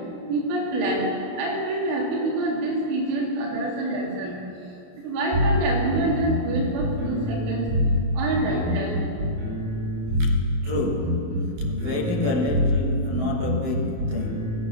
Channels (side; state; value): left; late; 28 ms